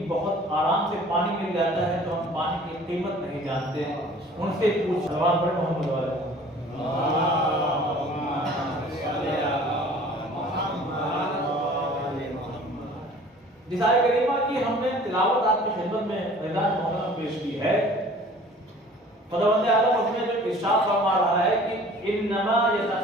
بہت آرام سے پانی مل جاتا ہے تو ہم پانی کی قیمت نہیں جانتے ہیں۔ ان سے پوچھ سوال پڑے محمد والے جس آیت کریمہ کی ہم نے تلاوت آپ کی خدمت میں اعلان محترم پیش کی ہے، خداوند عالم اس میں جو ارشاد فرما رہا ہے کہ انما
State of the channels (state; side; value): normal; both; correlation 0.48